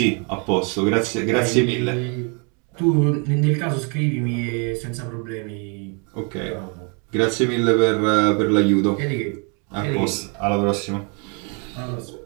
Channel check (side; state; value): left; quieter; 35.9 dB